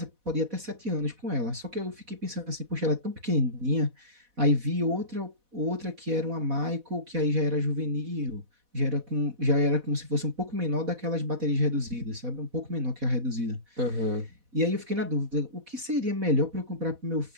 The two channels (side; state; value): left; late; 4.1 ms